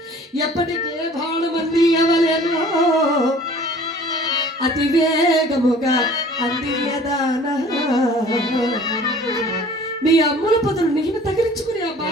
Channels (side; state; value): both; normal; correlation 0.49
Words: ఎప్పటికే బాణమంది ఎవలేనో అతి వేగముగా అందియదానా. మీ అమ్ముల పొదలు నేను తగిలించుకుని ఆ